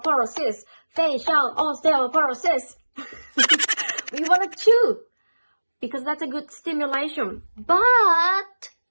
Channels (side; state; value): both; inverted; correlation -1.00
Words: facial osteoporosis. We want to chew because that's a good stimulation. But